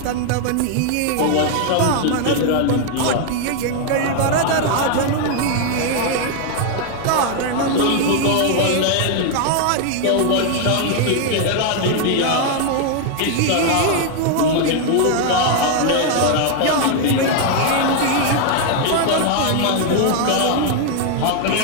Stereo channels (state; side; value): different; both; correlation 0.00